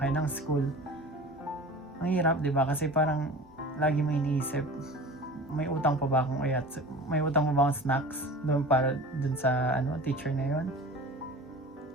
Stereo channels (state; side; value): normal; both; correlation 0.38